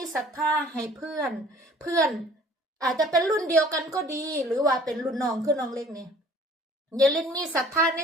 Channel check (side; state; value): both; normal; correlation 0.52